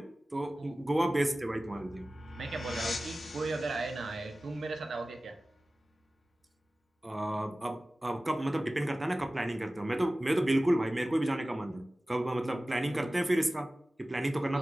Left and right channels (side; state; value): both; normal; correlation 0.97